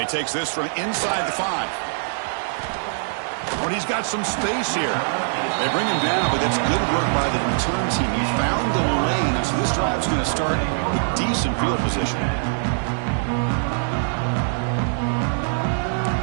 he takes this from inside the 5. But he's got some space here. They bring him down, but it's good work by the return team. He found the lane, so this drive's going to start with decent field position.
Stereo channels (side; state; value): left; silent; digital silence